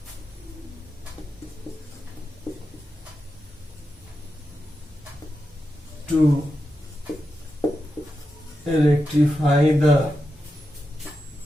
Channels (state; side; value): normal; both; correlation 0.89